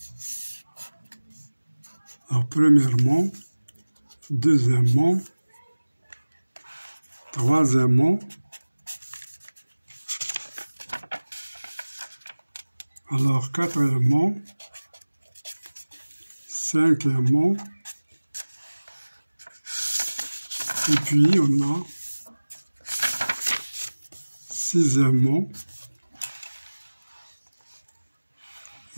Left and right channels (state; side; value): inverted; both; correlation -1.00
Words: Alors premièrement, deuxièmement, troisièmement, alors quatrièmement, cinquièmement, et puis on a sixièmement,